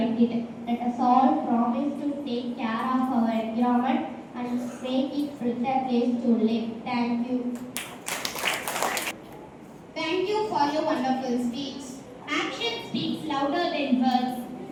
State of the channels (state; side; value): identical; both; correlation 1.00